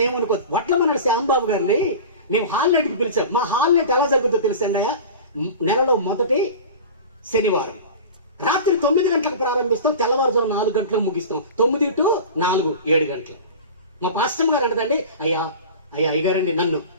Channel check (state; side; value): inverted; both; correlation -0.34